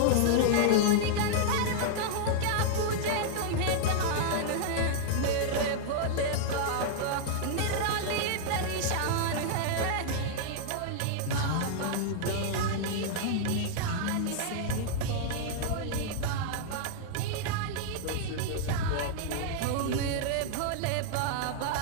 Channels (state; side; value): different; both; correlation -0.01